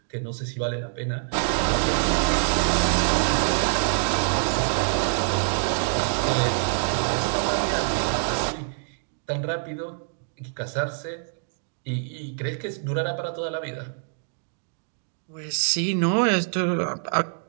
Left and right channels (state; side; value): silent; left; digital silence